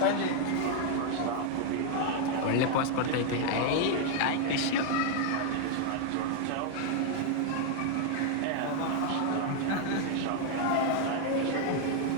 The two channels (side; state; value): both; different; correlation 0.00